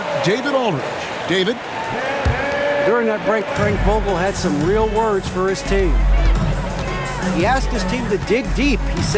David Aldridge. David? During that break, Frank Vogel had some real words for his team. He asked his team to dig deep. He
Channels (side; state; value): both; identical; correlation 1.00